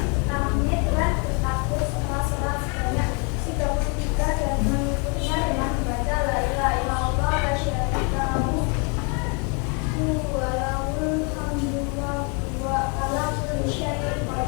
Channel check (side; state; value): right; quieter; 34.8 dB